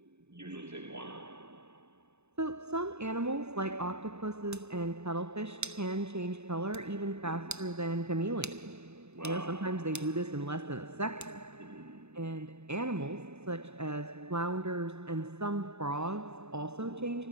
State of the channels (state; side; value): late; left; 0.81 ms